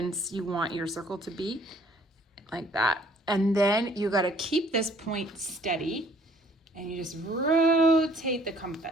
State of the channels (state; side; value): normal; both; correlation 0.59